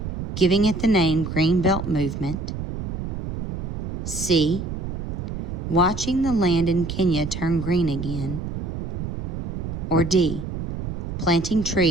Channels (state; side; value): noise; right; rumble, 5 dB below the sound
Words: Giving it the name Green Belt Movement? C. Watching the land in Kenya turn green again? Or D. Planting